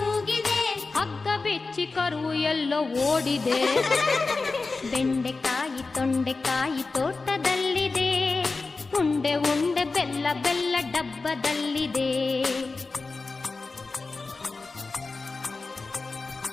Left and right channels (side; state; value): right; quieter; 3.9 dB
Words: ಹಗ್ಗ ಬಿಚ್ಚಿ ಕರು ಎಲ್ಲೋ ಓಡಿದೆ. ಬೆಂಡೆಕಾಯಿ ತೊಂಡೆಕಾಯಿ ತೋಟದಲ್ಲಿದೆ, ಉಂಡೆ ಉಂಡೆ ಬೆಲ್ಲ ಬೆಲ್ಲ ಡಬ್ಬದಲ್ಲಿದೆ.